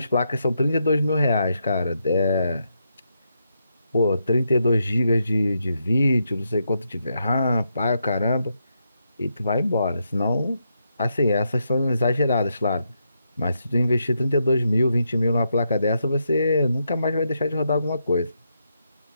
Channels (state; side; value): inverted; both; correlation -0.82